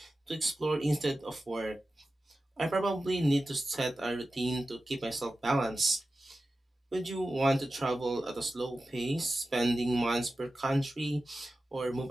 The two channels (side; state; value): both; normal; correlation 0.94